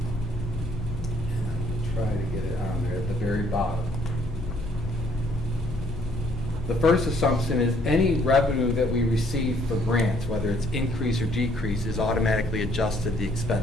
I'm going to try to get it on there at the very bottom. The first assumption is any revenue that we receive for grants, whether it's increase or decrease, is automatically adjusted to the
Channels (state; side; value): normal; both; correlation 0.64